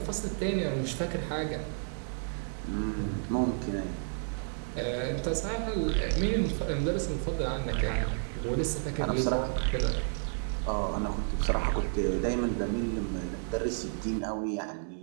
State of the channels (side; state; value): left; silent; 57 dB below the other